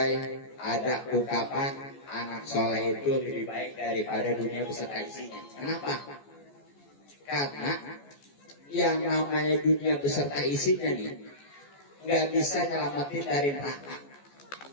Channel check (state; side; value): late; right; 14 ms